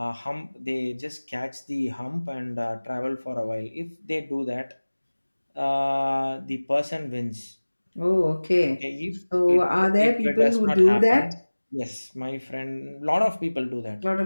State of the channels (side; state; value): both; inverted; correlation -1.00